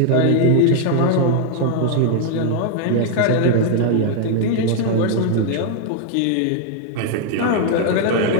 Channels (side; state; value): both; different; correlation 0.00